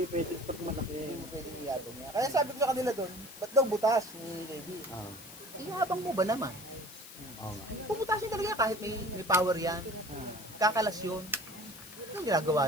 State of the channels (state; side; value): noise; left; hiss, 17 dB below the sound